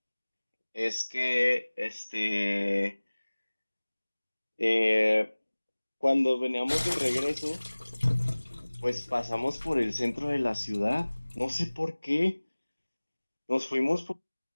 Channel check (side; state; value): both; inverted; correlation -1.00